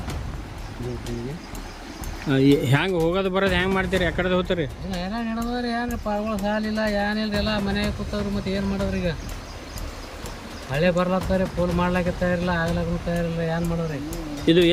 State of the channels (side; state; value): both; identical; correlation 1.00